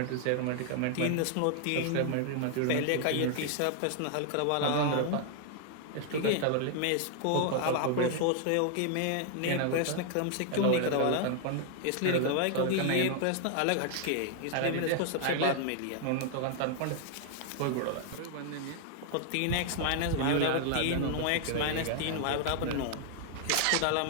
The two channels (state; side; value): different; both; correlation 0.00